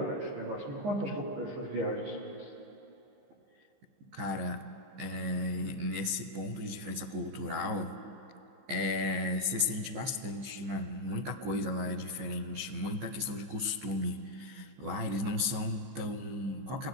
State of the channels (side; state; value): left; late; 15 ms